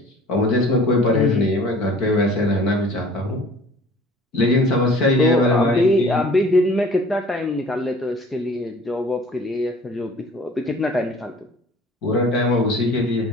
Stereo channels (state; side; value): normal; both; correlation 0.49